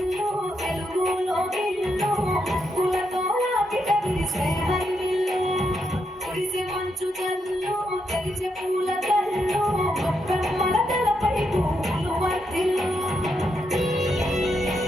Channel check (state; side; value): normal; both; correlation 0.81